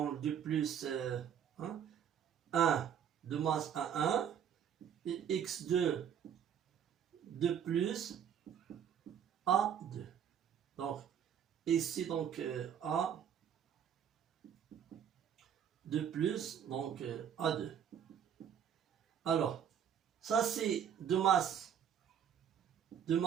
2 plus 1 de masse à 1, et x2 2 plus A2. Donc, ici, donc, A 2 plus, donc A2. Alors, ça c'est de masse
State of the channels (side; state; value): left; quieter; 8.6 dB